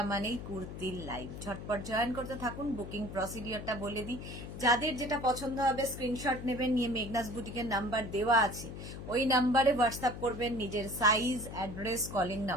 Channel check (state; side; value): noise; left; hum, 10 dB below the sound